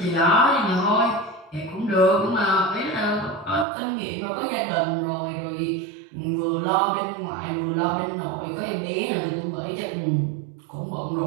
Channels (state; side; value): drops out; left; at 3.7 s